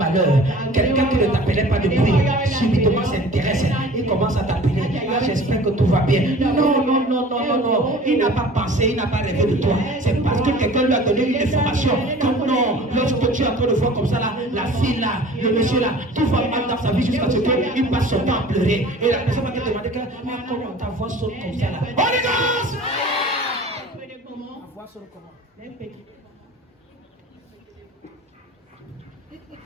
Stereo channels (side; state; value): both; normal; correlation 0.44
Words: quelqu'un qui ne t'appelait pas depuis, subitement s'intéresse, il commence à t'appeler. Ah, j'espère que tout va bien. Non. Il n'a pas pensé, il n'a pas rêvé de toi. C'est parce que quelqu'un lui a donné une information. Que non, lorsque tu es en train de voir comme ça, là, la fille là, le monsieur là, tout va mal dans sa vie jusqu'à ce qu'il passe son temps à pleurer. Et la personne va te demander que, mais comment ta voix saute comme ça là? Holy Ghost! Voir sur le comment. Il